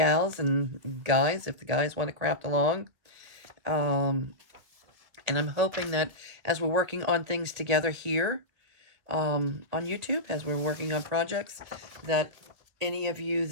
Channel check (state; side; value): late; left; 1.8 ms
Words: and guys, if the guys want to craft along. And I'm hoping that as we're working on things together here on YouTube, as we're working on projects, that any of you